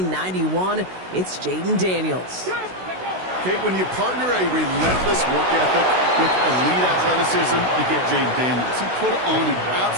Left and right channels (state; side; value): late; left; 16 ms